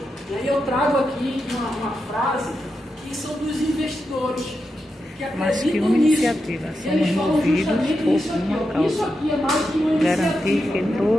E aí eu trago aqui uma frase que são dos investidores que Mas que acreditam uma nisso. iniciativa, Eles somos falam movidos justamente por isso aqui, uma ó. causa. Isso aqui é mais que uma Garantir iniciativa. que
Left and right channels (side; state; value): both; normal; correlation 0.87